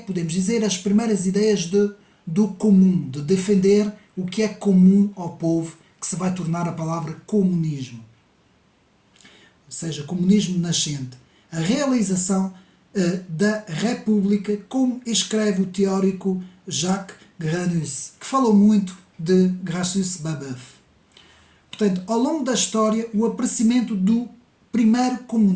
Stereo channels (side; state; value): both; identical; correlation 1.00